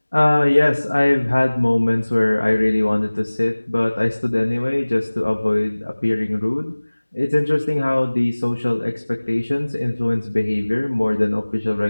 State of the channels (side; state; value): both; inverted; correlation -1.00